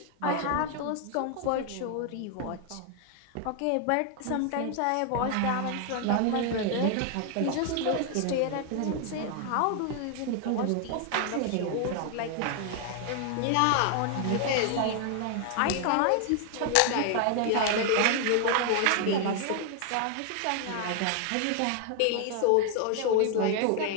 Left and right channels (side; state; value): both; different; correlation 0.00